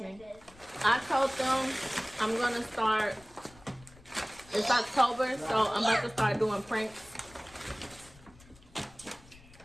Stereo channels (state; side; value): noise; left; rumble, 24 dB below the sound